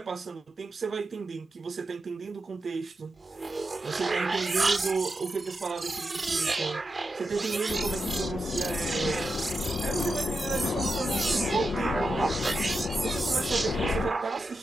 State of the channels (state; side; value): normal; both; correlation 0.88